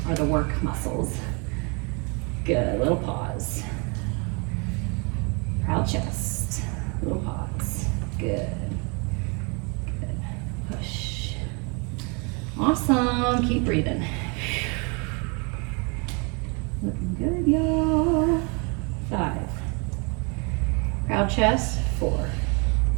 the work muscles. Good, little pause. Proud chest, little pause. Good. Good. Push. down, keep breathing. Looking good, y'all. 5. Proud chest, 4.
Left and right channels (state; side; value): quieter; left; 32.8 dB